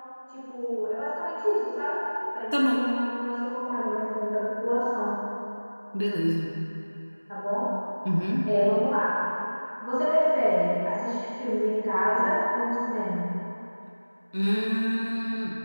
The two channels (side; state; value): both; inverted; correlation -1.00